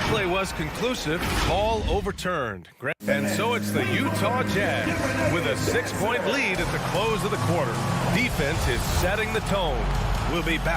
was conclusive, call overturned. And so it's the Utah Jazz with a 6-point lead at the close of the quarter. Defense is setting the tone. We'll be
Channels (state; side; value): identical; both; correlation 1.00